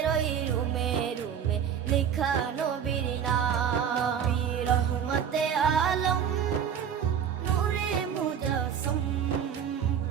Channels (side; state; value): left; quieter; 8.3 dB